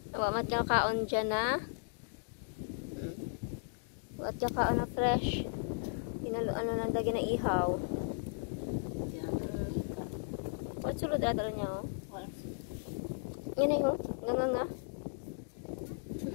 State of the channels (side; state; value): right; silent; digital silence